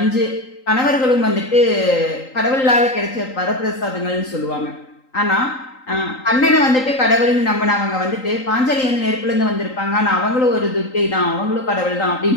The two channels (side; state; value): right; late; 3.8 ms